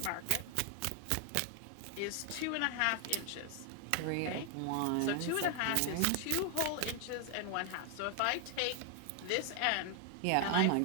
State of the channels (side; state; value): both; different; correlation 0.00